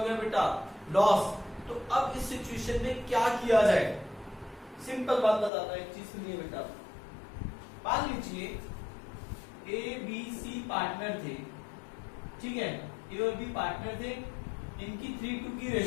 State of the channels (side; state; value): right; drops out; at 5.5 s